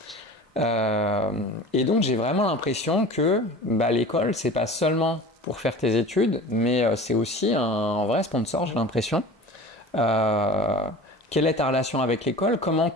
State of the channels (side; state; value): both; normal; correlation 0.37